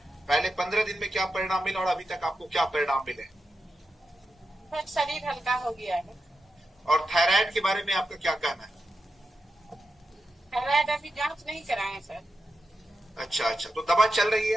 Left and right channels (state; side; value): normal; both; correlation 0.89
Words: पहले 15 दिन में क्या परिणाम मिला और अभी तक आपको क्या परिणाम मिले? सर शरीर हल्का हो गया है। और थायराइड के बारे में आपका क्या कहना है? थायराइड अभी जांच नहीं कराए सर। अच्छा अच्छा, तो दवा चल रही